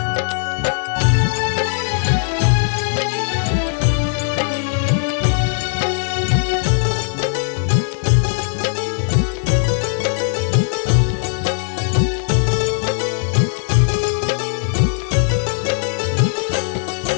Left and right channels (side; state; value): right; silent; 67 dB below the other